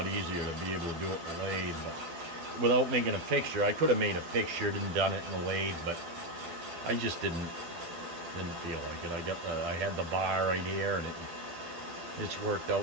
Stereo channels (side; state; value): left; late; 12 ms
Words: easier to be able to do it in the lathe, but without making a fixture. I could have made a fixture and done it in the lathe, but I just didn't feel like it. I had the bar right here, and it's worked